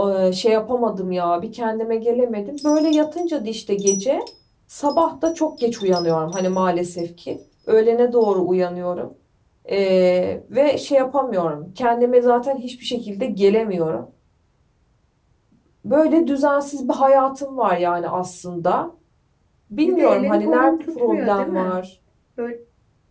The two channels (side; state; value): both; identical; correlation 1.00